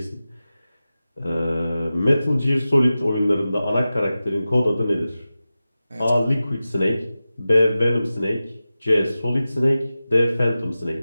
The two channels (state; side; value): inverted; both; correlation -0.94